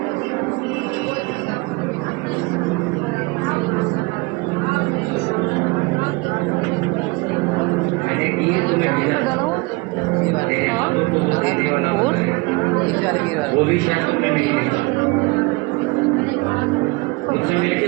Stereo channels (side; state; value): left; quieter; 25.4 dB